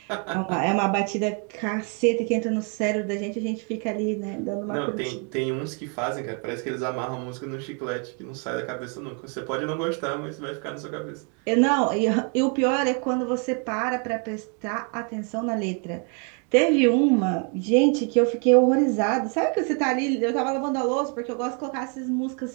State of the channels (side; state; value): left; quieter; 38.1 dB